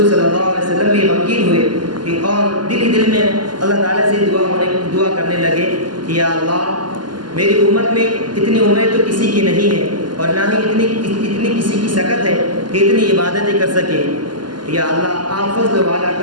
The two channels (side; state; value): left; late; 0.71 ms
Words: صلی اللہ علیہ وسلم بھی غمگین ہوئے اور دل میں اللہ تعالیٰ سے دعا کرنے لگے کہ یا اللہ میری امت میں اتنی عمریں تو کسی کی نہیں ہے اور نہ ہی اتنی کسی کی سکت ہے کہ اتنی عبادتیں کر سکے۔ یا اللہ آپ فضل والا،